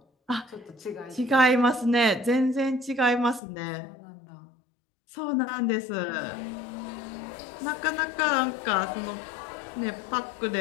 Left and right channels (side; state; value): right; drops out; at 3.4 s